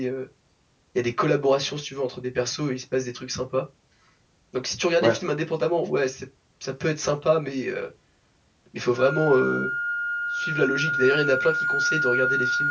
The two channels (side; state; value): both; identical; correlation 1.00